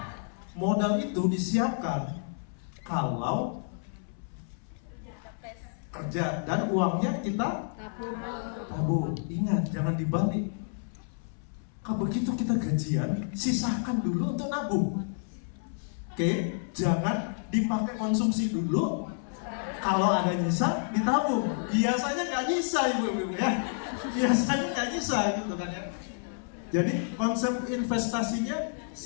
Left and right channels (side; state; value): right; silent; 58 dB below the other